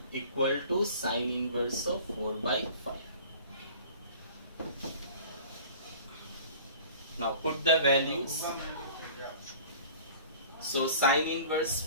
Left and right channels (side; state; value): both; inverted; correlation -0.45